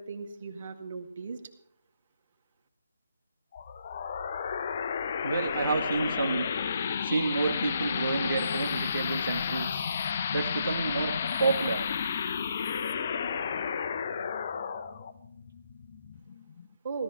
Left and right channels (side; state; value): both; inverted; correlation -0.76